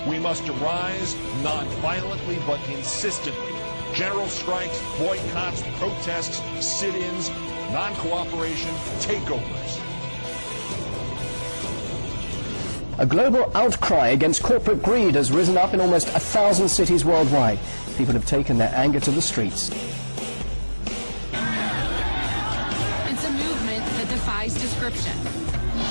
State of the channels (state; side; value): inverted; both; correlation -1.00